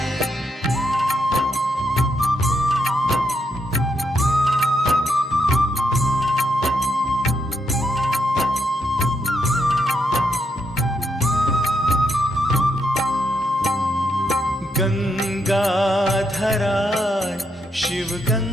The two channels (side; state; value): both; normal; correlation 0.78